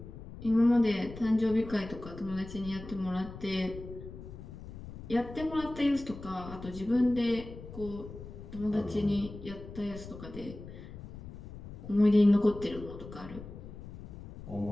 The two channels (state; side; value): noise; left; rumble, 13 dB below the sound